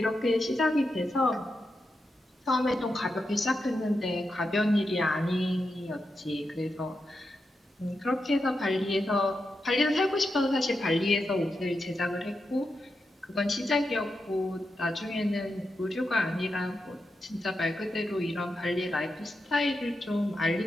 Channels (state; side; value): normal; both; correlation 0.87